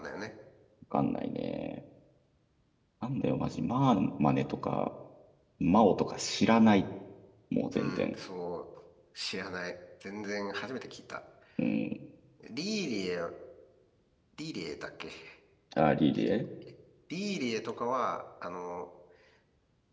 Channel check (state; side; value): identical; both; correlation 1.00